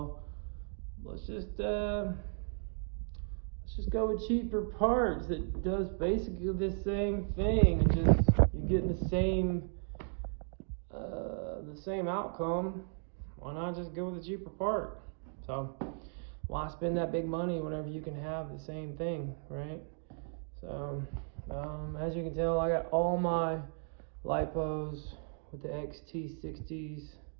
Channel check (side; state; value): left; silent; 54 dB below the other